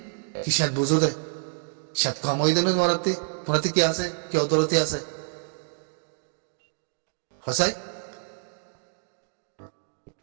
কি সাত বুঝো দে সাত কম হয়ে দেবে তোমারাতে কি আছে কি অদরতি আছে হসাই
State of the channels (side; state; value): left; silent; digital silence